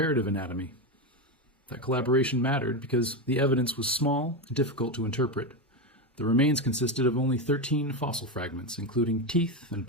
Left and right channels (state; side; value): normal; both; correlation 0.13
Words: anatomy. That collaboration mattered because the evidence was small and difficult to interpret. The remains consisted of only 13 fossil fragments, including teeth and